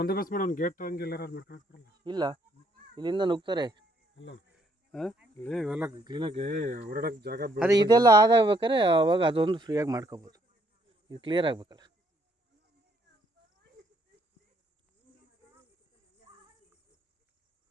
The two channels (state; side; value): normal; both; correlation 0.69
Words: ಮಾಡಿ ಒಂದು ಗೇಟ್ ಹಂಗೆಲ್ಲ ಮಾಡ್ಕೊಳಕ್ ಬರಲ್ಲ. ಇಲ್ಲ, ಇಲ್ಲಿಂದ ನುಗ್ತಾರೆ. ಇಲ್ಲ ಇವೆಲ್ಲ ಕ್ಲೀನಾಗಿ ಓಡಾಡಕ್ಕೆ ಜಾಗ ಅದೇ ಇದೆಲ್ಲ ಆದಾಗ್ಬೇಕಾದ್ರೆ ಅವಾಗ ಅದೊಂದು ಫ್ರೀಯಾಗಿ ಮಾಡ್ಕೋಬೋದು. ಇದು ಕ್ಲಿಯರ್ ಆಗ್ಬೇಕಲ್ಲ.